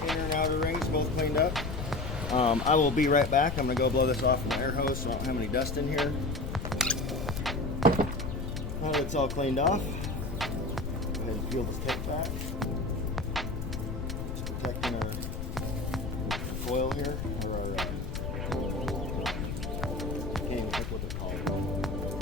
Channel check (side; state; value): left; noise; rumble, 4 dB below the sound